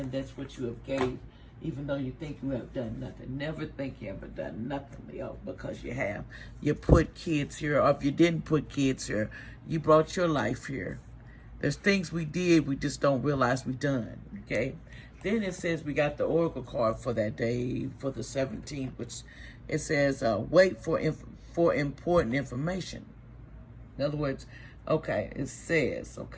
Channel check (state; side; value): identical; both; correlation 1.00